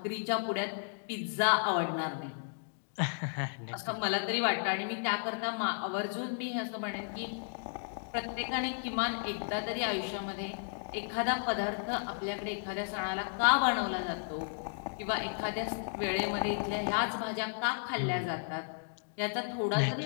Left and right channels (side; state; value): right; silent; digital silence